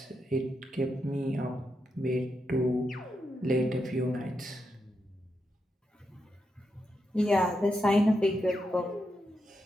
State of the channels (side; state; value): both; normal; correlation 0.84